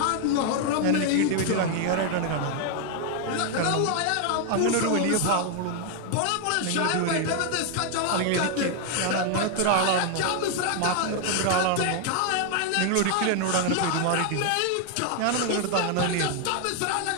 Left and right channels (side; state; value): both; different; correlation 0.00